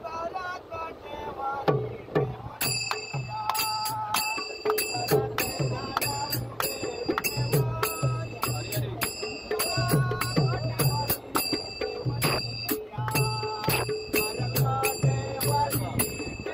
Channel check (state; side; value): identical; both; correlation 1.00